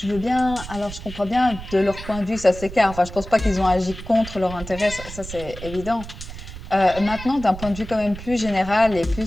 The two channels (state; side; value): noise; right; rumble, 12 dB below the sound